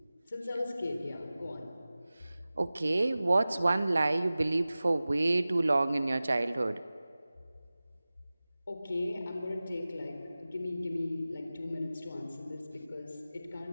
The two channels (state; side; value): inverted; both; correlation -0.97